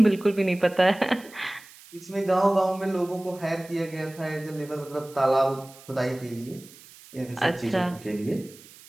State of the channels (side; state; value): right; noise; hiss, 22 dB below the sound